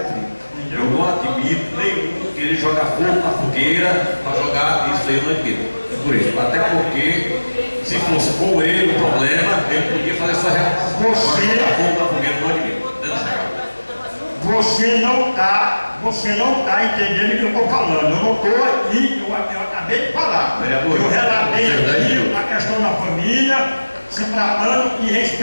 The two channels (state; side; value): inverted; both; correlation -1.00